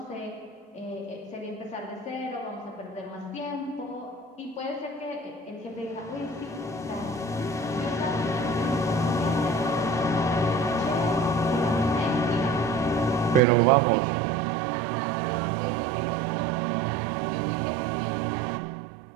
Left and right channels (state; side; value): drops out; left; at 13.4 s